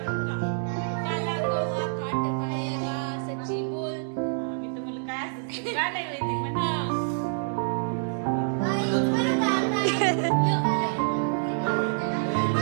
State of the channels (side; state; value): left; silent; digital silence